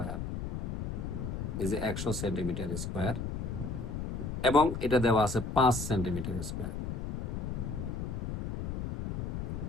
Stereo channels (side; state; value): left; noise; rumble, 4 dB below the sound